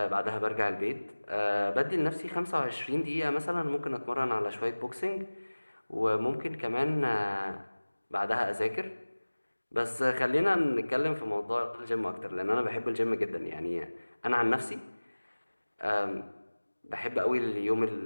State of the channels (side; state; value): both; inverted; correlation -1.00